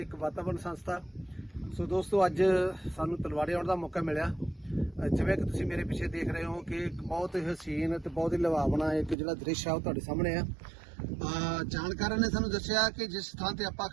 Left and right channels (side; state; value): left; drops out; at 9.2 s